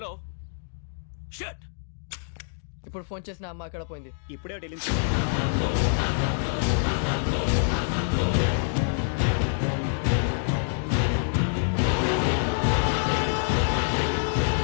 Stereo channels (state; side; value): silent; right; digital silence